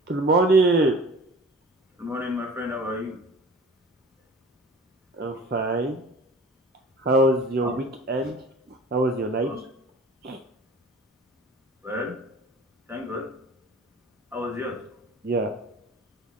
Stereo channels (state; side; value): normal; both; correlation 0.43